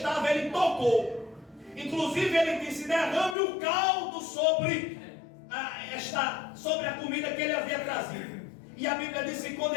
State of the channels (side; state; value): right; drops out; at 3.4 s